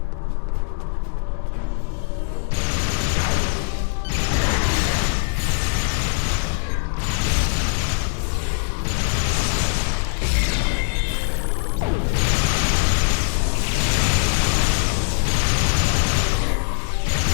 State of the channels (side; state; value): right; silent; digital silence